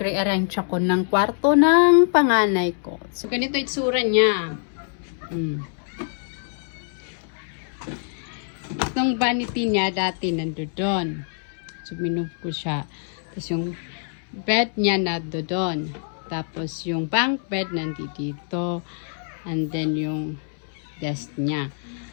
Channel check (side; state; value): right; silent; 62 dB below the other